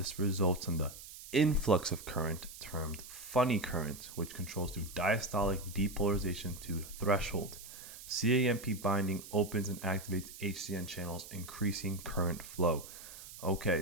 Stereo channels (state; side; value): noise; right; hiss, 14 dB below the sound